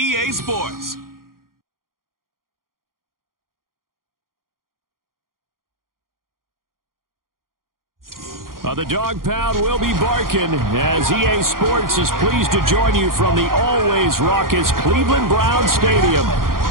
Sports. The dog pound will be barking as EA Sports is pleased to join you from the always raucous Cleveland Browns Stadium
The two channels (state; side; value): late; left; 0.91 ms